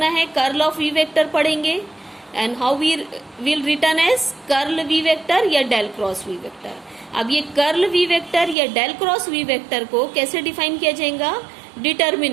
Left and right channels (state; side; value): drops out; left; at 8.6 s